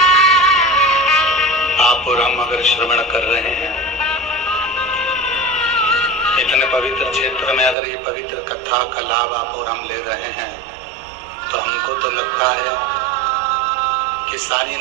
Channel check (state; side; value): drops out; left; at 7.8 s